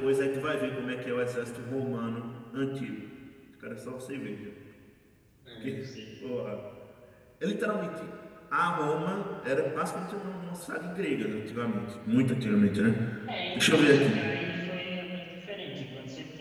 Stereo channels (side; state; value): both; identical; correlation 1.00